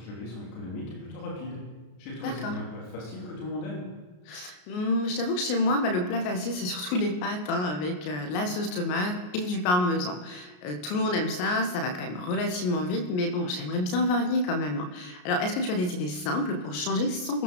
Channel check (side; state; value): right; late; 33 ms